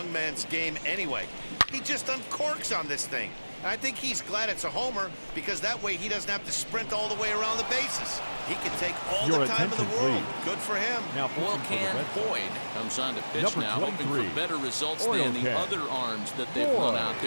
man's game anyway? He just uncorks on this thing. And I think he's glad it's a homer because that way he doesn't have to sprint all the way around the bases. He can take all Your the time in the attention, world. please. Good for him. Now pitching Oil for the Can Red Sox. Boyd comes on to pitch Number now, hoping 23. for better results Oil than the Can. other arms that they've Boyd. run out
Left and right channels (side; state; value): both; inverted; correlation -1.00